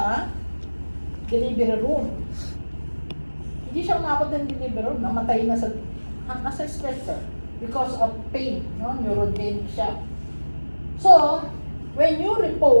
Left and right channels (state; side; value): inverted; both; correlation -1.00